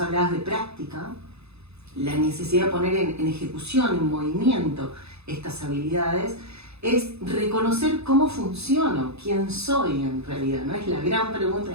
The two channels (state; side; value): late; left; 0.79 ms